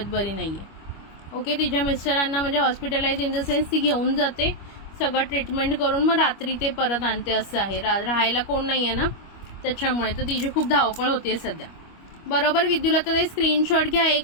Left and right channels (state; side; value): late; right; 25 ms